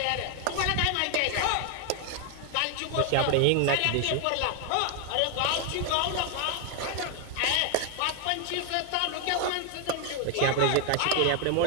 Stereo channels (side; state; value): both; different; correlation 0.00